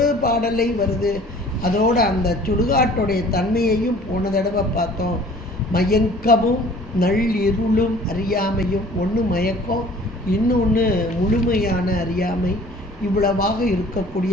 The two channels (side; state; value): both; normal; correlation 0.50